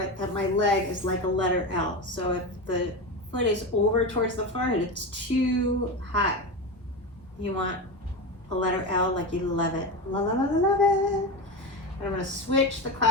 that my leg is like a letter L. So if the foot is over towards the forehead, it's too high. You want a letter L like you love it. Love it, love it, love it. And I'm going to switch the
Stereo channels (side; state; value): both; normal; correlation 0.20